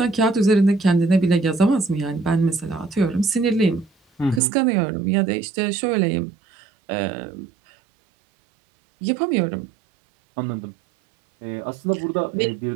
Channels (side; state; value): left; drops out; at 4.4 s